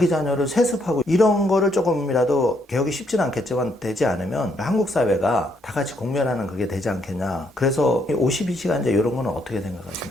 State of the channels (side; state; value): both; normal; correlation 0.73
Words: 자녀를 세습하고 이런 거를 조금이라도 개혁이 쉽진 않겠지만 되지 않으면 한국 사회가 다 같이 공멸하는 그게 되지 않겠냐. 그래서 52시간제 이런 거는 어떻게